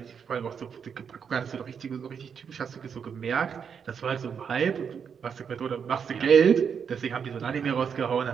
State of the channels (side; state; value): left; quieter; 7.0 dB